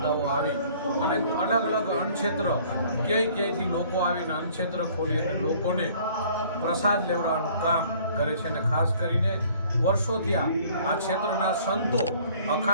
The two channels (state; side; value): inverted; both; correlation -0.55